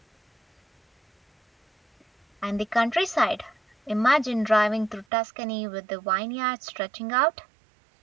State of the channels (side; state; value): left; drops out; at 5.1 s